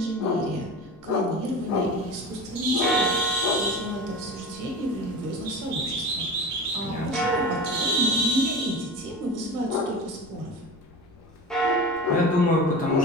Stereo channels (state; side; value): noise; left; rumble, 26 dB below the sound